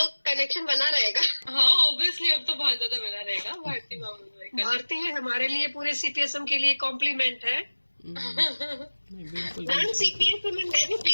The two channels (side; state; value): both; inverted; correlation -1.00